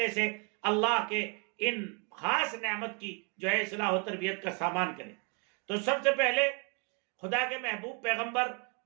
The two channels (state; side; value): quieter; left; 35.7 dB